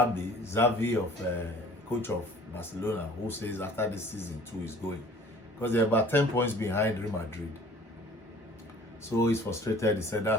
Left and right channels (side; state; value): both; normal; correlation 0.49